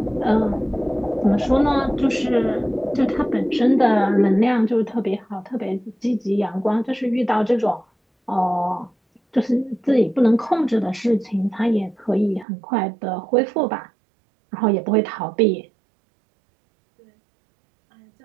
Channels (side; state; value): left; drops out; at 12.5 s